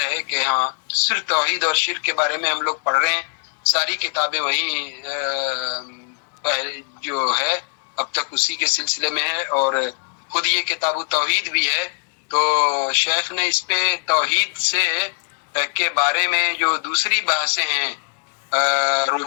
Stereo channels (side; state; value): right; silent; 57 dB below the other